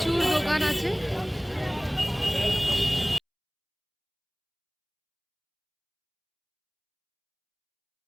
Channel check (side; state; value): both; identical; correlation 1.00